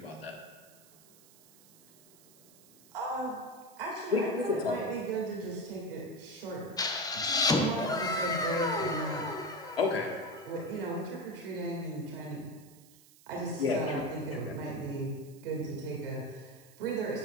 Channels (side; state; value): right; noise; hiss, 24 dB below the sound